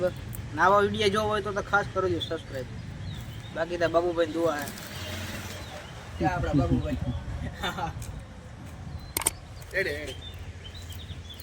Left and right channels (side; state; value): both; identical; correlation 1.00